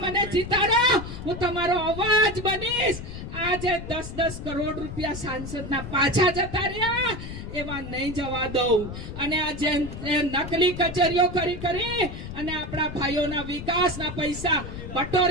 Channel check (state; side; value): noise; left; rumble, 9 dB below the sound